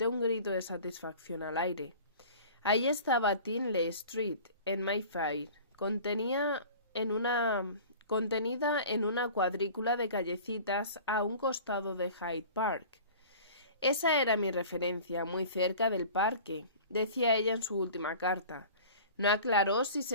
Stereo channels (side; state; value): both; inverted; correlation -0.42